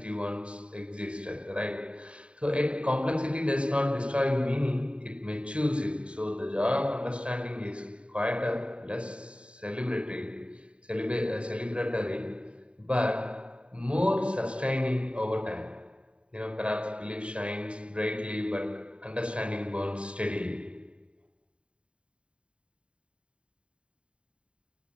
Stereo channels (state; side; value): late; left; 0.057 ms